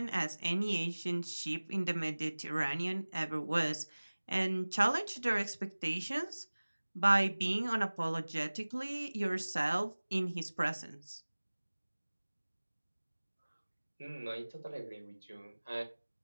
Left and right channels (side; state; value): both; inverted; correlation -1.00